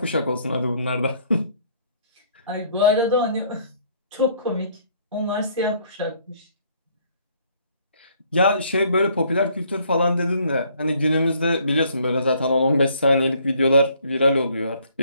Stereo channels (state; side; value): inverted; both; correlation -0.63